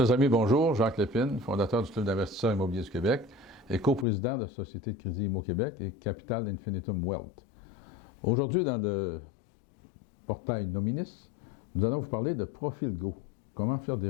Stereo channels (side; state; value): right; drops out; at 4.0 s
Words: amis, bonjour. Jacques Lépine, fondateur du Club d'investisseurs immobiliers du Québec et coprésident de la Société de crédit Immo Québec et Capital Infinitum Wealth. Aujourd'hui, dans le portail Nominis, nous allons vous parler de ProfilGo. Comment faire des